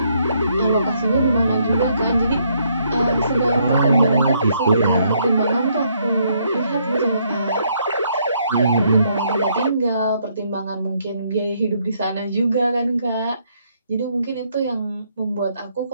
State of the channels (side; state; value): both; inverted; correlation -0.72